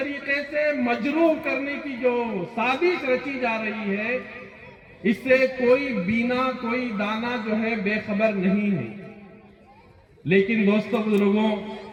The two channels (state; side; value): identical; both; correlation 1.00